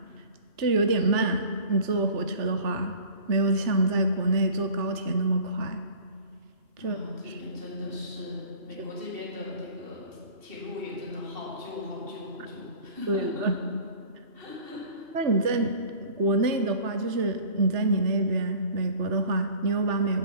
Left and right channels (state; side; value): late; left; 3.3 ms